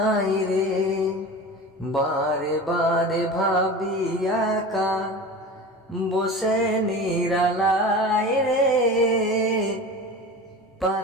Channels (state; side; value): normal; both; correlation 0.33